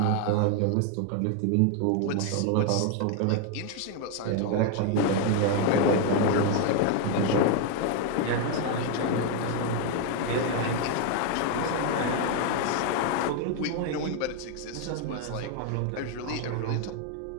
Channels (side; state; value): both; different; correlation 0.01